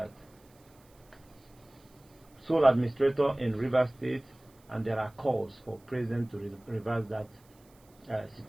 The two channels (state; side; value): noise; right; hiss, 30 dB below the sound